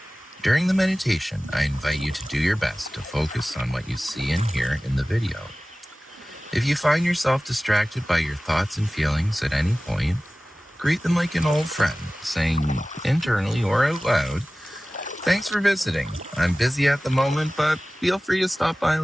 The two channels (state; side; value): normal; both; correlation 0.97